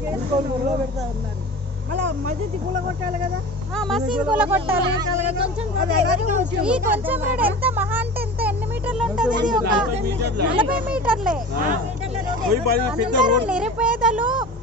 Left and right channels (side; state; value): both; normal; correlation 0.35